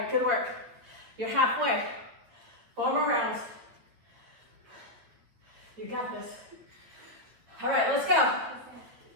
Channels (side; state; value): left; late; 8.7 ms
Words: good work. You're halfway. 4 more rounds. You got this. All right, let's go.